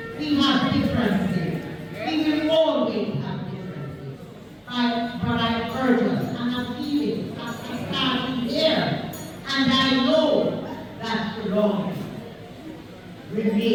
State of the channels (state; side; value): identical; both; correlation 1.00